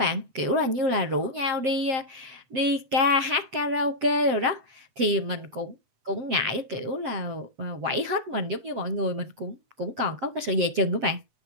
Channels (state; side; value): late; left; 7.6 ms